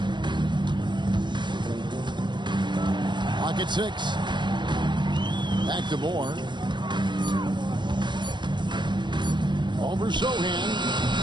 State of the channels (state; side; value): late; left; 0.22 ms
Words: Pocket 6. Back to Moore. Over Zohan.